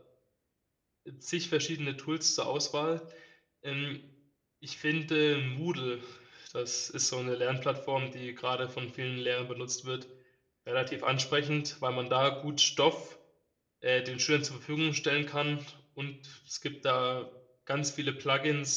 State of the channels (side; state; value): both; identical; correlation 1.00